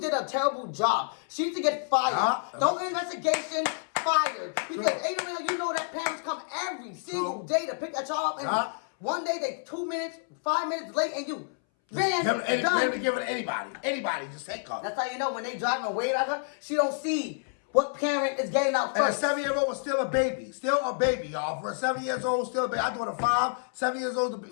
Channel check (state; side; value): silent; right; 59 dB below the other